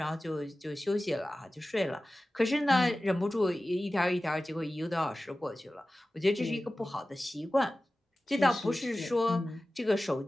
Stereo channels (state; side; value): normal; both; correlation 0.96